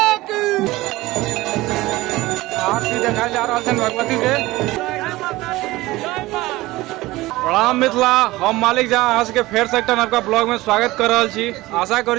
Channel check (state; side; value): quieter; left; 18.9 dB